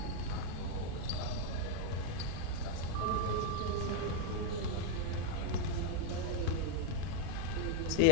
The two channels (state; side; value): different; both; correlation 0.00